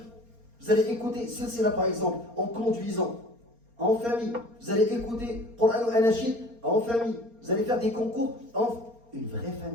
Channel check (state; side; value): late; left; 4.3 ms